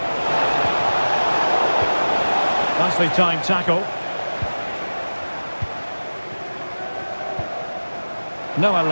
Nicely timed tackle. Noah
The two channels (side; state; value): both; inverted; correlation -1.00